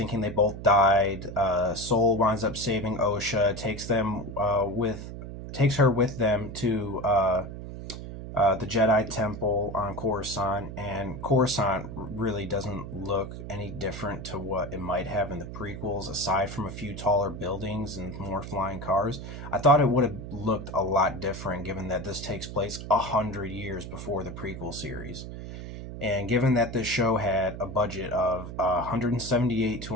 they both died. Soul winds up saving Osha, takes her with them to the Jedi Temple on Coruscant, and Coruscant really doesn't look any different to what it might have in the prequels, aside from a few taller buildings and more flying cars. I thought it would have looked a lot different, given that this takes place 100 years before the prequel series. And given that this show had a budget of 178 to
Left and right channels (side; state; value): right; noise; hum, 9 dB below the sound